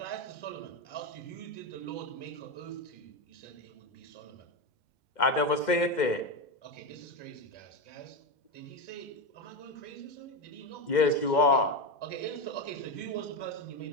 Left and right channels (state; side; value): late; right; 2.1 ms